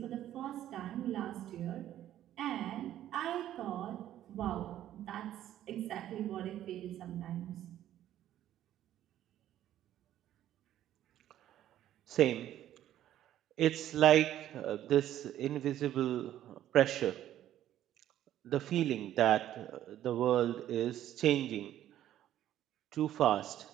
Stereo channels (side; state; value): left; quieter; 12.2 dB